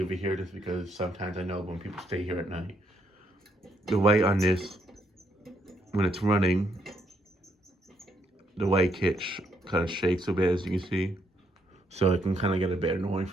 it here just because sometimes I know when people stay here at night, the light on this, when it's running, the light kit kind of shakes a bit, as you can see. So it can kind of get a bit annoying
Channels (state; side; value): normal; both; correlation 0.74